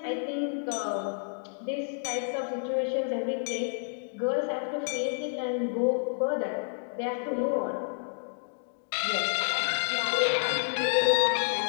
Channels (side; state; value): right; silent; 58 dB below the other